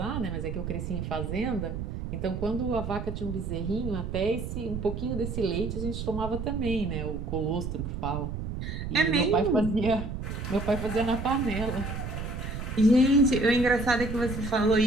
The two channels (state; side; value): noise; right; rumble, 5 dB below the sound